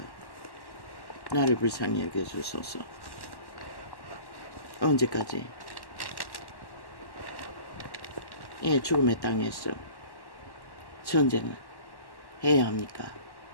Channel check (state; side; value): late; right; 1.1 ms